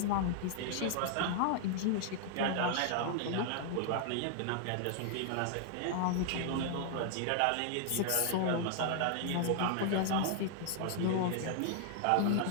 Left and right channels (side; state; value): both; different; correlation -0.01